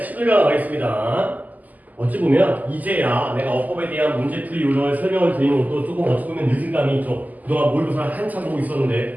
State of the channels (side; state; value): left; late; 0.080 ms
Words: 11강 가겠습니다. 어찌 보면 이제야 내가 어법에 대한 문제풀이 요령을 설명을 드리는 것도 조금 어찌 보면 늦은 감이 있죠. 그동안 모의고사를 한참 보고